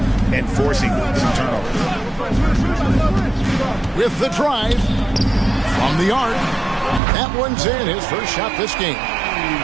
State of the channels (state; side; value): drops out; left; at 7.0 s